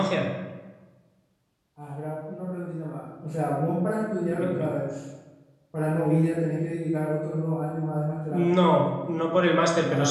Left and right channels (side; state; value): both; identical; correlation 1.00